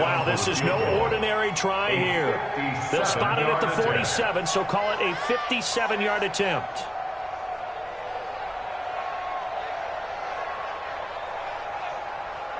this is no ordinary try here. They'll spot it at the 47, so call it a 57-yard attempt.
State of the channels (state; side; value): identical; both; correlation 1.00